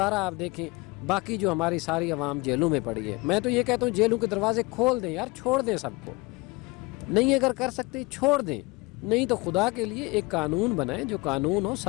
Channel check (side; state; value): right; quieter; 24.7 dB